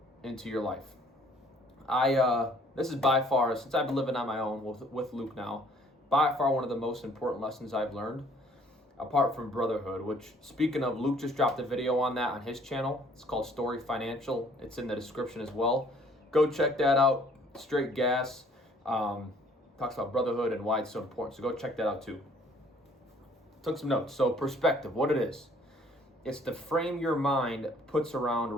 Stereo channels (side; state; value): both; normal; correlation 0.59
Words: into your life. This is by far, since I've been living on my own with Luke now, by far one of the most important lessons I've learned, apart from brotherhood, which, speaking of, Luke just dropped a video on that on his channel. It's called Story Financial. It's in the description as well. Go check that out. Straight gas. Talks about brotherhood and why it's so important. So go check that out too. Took some notes. So perspective, what it is. It's the frame your mind puts around